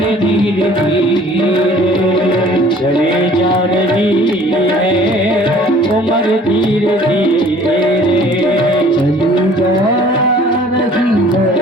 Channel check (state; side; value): normal; both; correlation 0.52